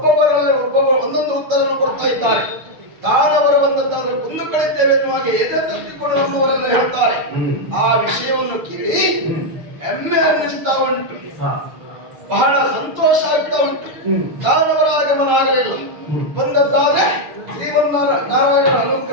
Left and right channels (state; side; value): late; left; 6.6 ms